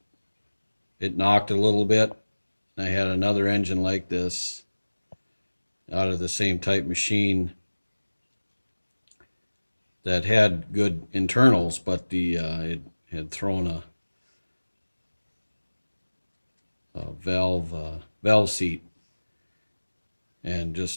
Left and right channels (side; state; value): both; inverted; correlation -1.00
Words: It knocked a little bit. I had another engine like this out of the same type machine that had good internals, but the it had thrown a valve seat and